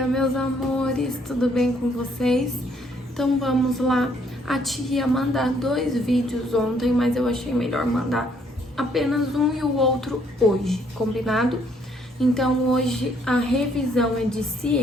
meus amores, tudo bem com vocês? Então vamos lá. A tia ia mandar 2 vídeos ontem, mas eu achei melhor mandar apenas um e o outro hoje, combinado? Então hoje a revisão é de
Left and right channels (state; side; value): normal; both; correlation 0.67